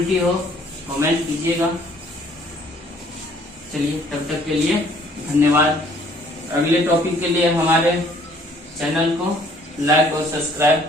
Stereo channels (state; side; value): normal; both; correlation 0.59